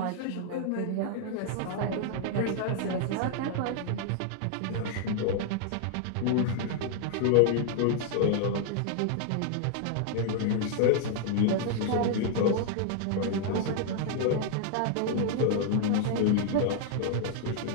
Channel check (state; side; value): different; both; correlation 0.00